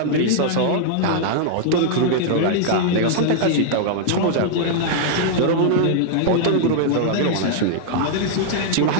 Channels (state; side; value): different; both; correlation -0.01